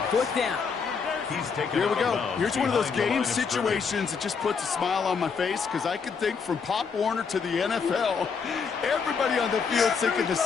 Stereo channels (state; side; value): quieter; right; 5.7 dB